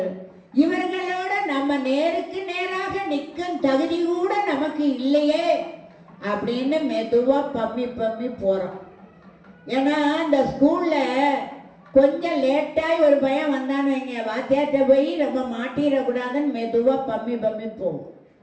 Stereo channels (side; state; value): both; identical; correlation 1.00